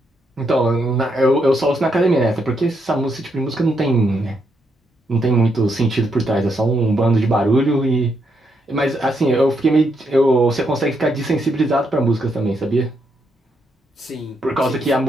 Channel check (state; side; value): normal; both; correlation 0.78